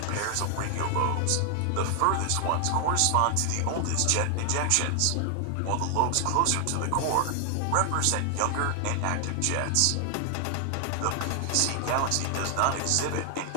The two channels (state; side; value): different; both; correlation 0.00